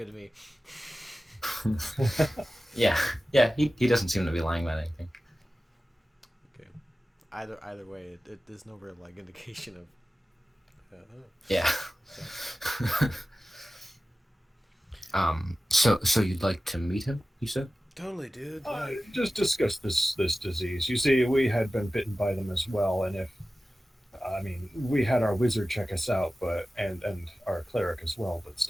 to me. Yeah, he doesn't seem to be lying about anything. Okay. Either way, there's no real indication of Yeah. So you'd like to meet him? You said. Totally, dude. Just discuss this disease. You see, we had been bitten by them as well, and we had our wizard check us out, but and our cleric as well, but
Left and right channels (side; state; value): both; normal; correlation 0.95